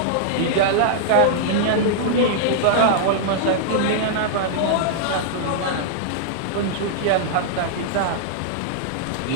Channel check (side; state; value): both; different; correlation -0.01